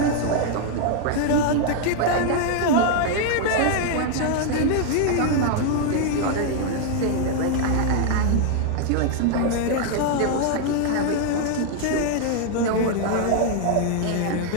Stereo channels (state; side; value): different; both; correlation 0.00